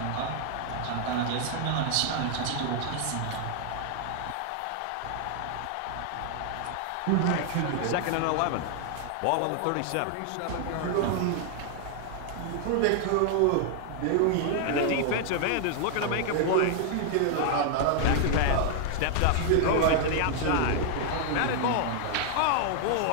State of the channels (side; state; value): both; different; correlation 0.00